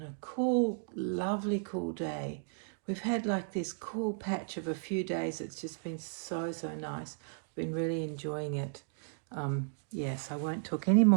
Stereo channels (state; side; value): silent; left; digital silence